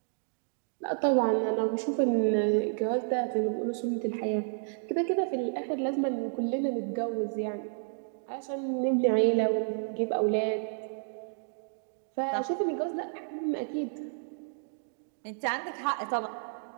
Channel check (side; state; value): left; silent; digital silence